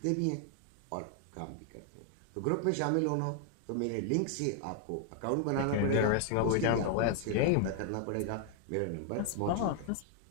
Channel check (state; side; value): different; both; correlation 0.00